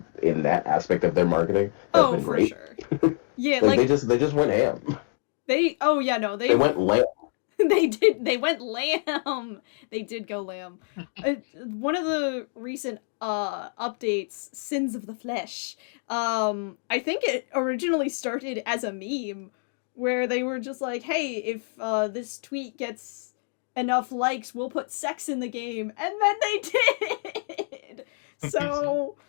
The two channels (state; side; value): silent; right; 60 dB below the other